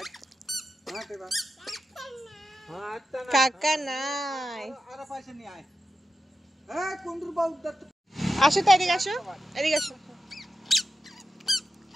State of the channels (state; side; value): normal; both; correlation 0.90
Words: বেড়া, হ্যাঁ কাকা নাই, আর পয়সা নিয়ে আয়। এই কোন্ডুর বাবু দত্ত আসো তো, এদিকে আসো, এদিকে আসো।